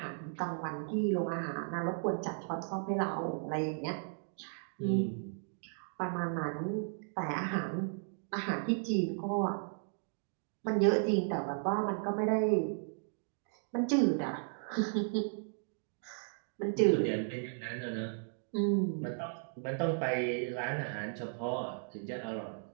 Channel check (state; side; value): silent; left; digital silence